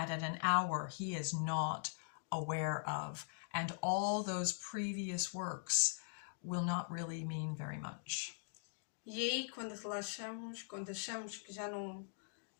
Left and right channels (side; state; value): right; silent; digital silence